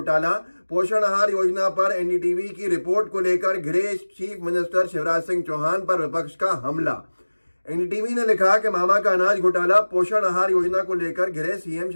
पोषण आहार योजना पर एनडीटीवी की रिपोर्ट को लेकर घिरे चीफ मिनिस्टर शिवराज सिंह चौहान पर विपक्ष का हमला। एनडीटीवी ने लिखा कि मामा का अनाज घोटाला, पोषण आहार योजना को लेकर घिरे सीएम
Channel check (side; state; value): both; inverted; correlation -1.00